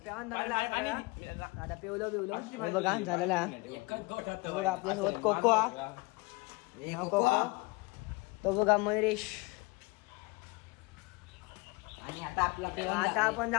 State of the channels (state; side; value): quieter; right; 25.8 dB